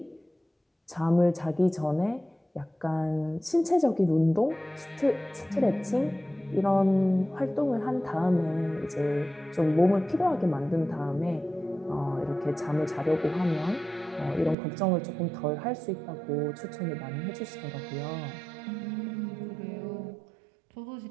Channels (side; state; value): left; drops out; at 14.6 s